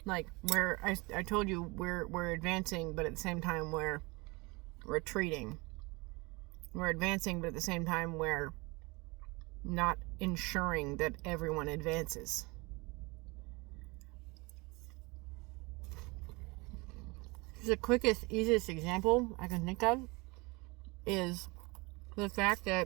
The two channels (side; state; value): left; quieter; 25.8 dB